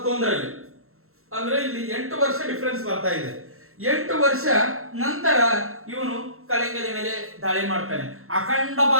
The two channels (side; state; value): left; late; 0.62 ms